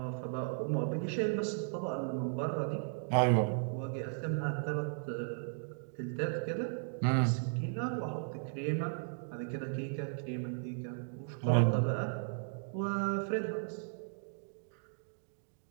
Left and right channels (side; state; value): left; silent; digital silence